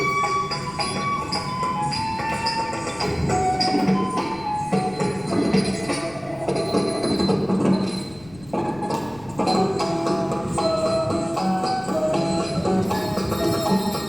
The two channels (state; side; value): noise; left; rumble, 22 dB below the sound